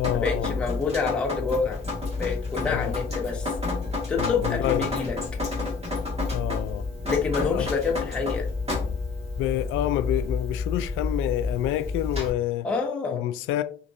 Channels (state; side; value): quieter; right; 5.6 dB